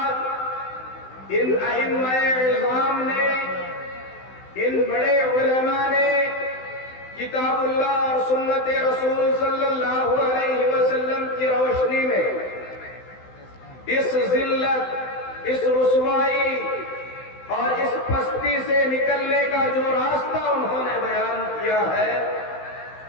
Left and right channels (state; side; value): late; right; 16 ms